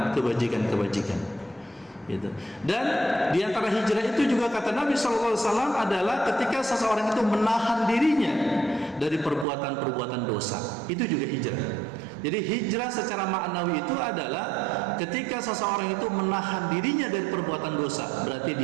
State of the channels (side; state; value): left; drops out; at 9.5 s